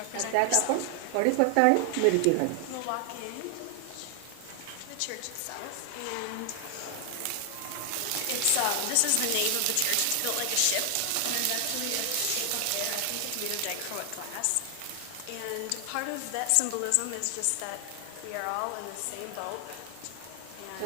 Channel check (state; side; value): different; both; correlation 0.00